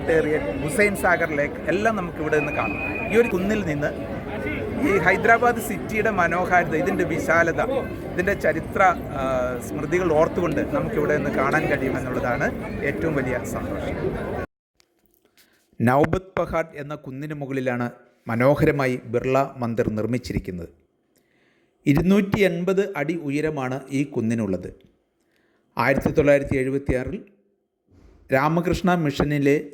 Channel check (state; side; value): identical; both; correlation 1.00